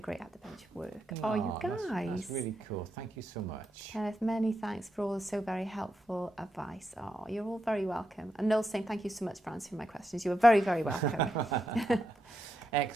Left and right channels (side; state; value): both; normal; correlation 0.84